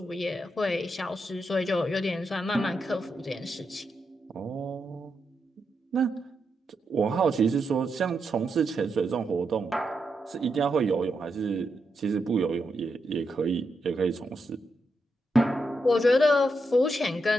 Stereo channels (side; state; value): both; normal; correlation 0.84